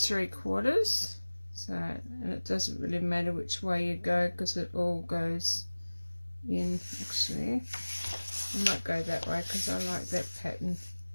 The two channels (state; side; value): inverted; both; correlation -1.00